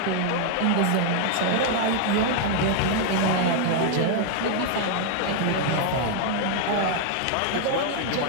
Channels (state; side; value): different; both; correlation 0.00